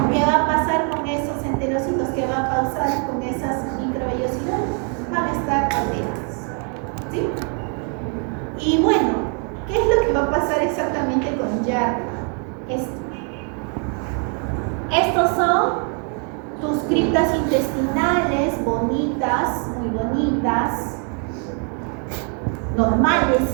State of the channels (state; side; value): quieter; left; 38.9 dB